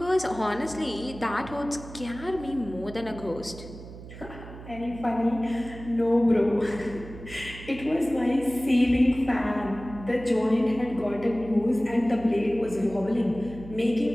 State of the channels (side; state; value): right; noise; hum, 14 dB below the sound